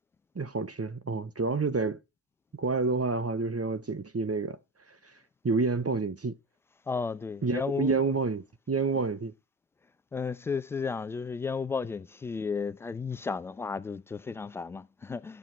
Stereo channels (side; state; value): both; normal; correlation 0.28